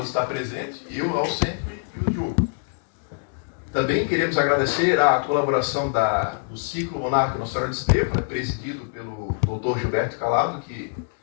estar presente, eu ao centro e o Diogo. Também queremos agradecer a colaboração do Ciclo Monarca Nossa Senhora de Estevo, né? Presidido pelo Dr. Gilberto Calado, que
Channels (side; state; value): right; silent; digital silence